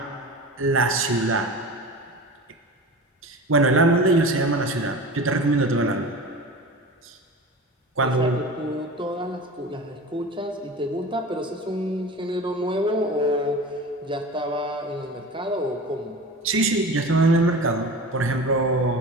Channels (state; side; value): normal; both; correlation 0.33